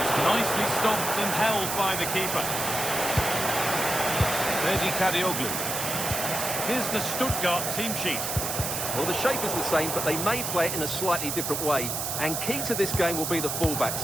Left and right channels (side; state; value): right; noise; hiss, 2 dB below the sound